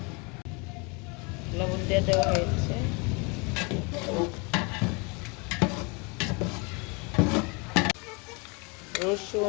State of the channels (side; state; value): right; quieter; 30.6 dB